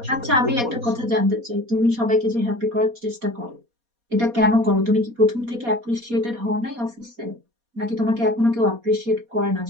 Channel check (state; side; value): late; left; 4.2 ms